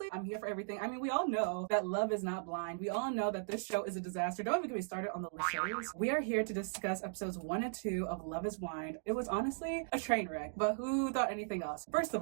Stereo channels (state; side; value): silent; left; digital silence